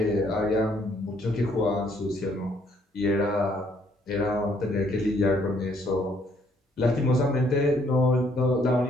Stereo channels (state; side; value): normal; both; correlation 0.67